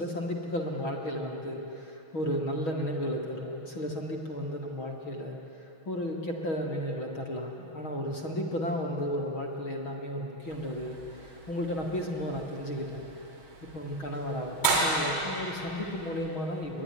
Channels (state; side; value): late; right; 6.3 ms